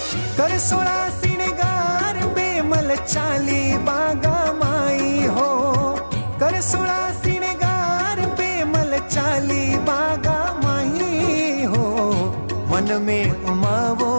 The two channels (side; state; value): both; inverted; correlation -1.00